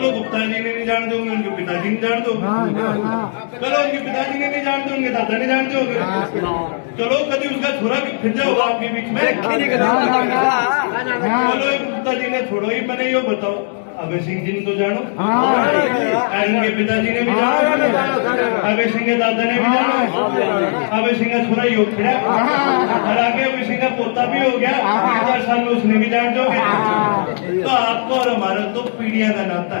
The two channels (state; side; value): silent; right; digital silence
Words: गुप्ता जी ने नहीं जान दोगे, उनके पिताजी नहीं जान दोगे, चलो उनके पिताजी ने नहीं जान दो, उनके दादा नहीं जान दोगे, चलो कभी उसका छोरा फिर जाओगा आपके बीच में, चलो गुप्ता जी ने छोड़ो ही, मैंने यो बताओ अभय सिंह जी ने तो जानो, उनके पिताजी ने भी जानो, अभय सिंह के दादा ने भी जानो, अभय सिंह का छोरा योग खड़ा, और आगे अभय सिंह का पोता भी हो गया, 10 साल में उसने भी जान दोगे। तो आपको और हमारा तो पीढ़ियां का नाता